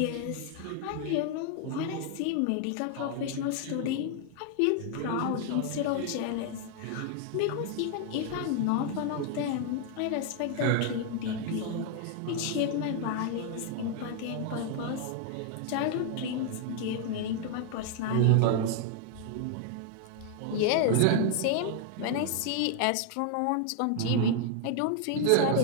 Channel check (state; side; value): different; both; correlation 0.00